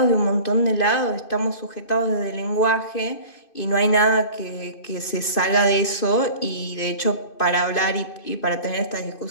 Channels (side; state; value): right; late; 2.5 ms